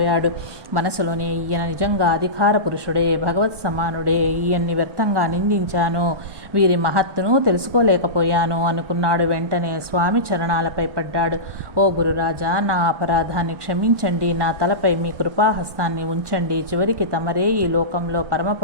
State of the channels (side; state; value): left; late; 1.3 ms